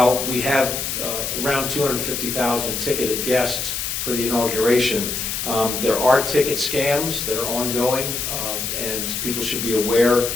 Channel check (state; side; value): noise; left; hiss, 3 dB below the sound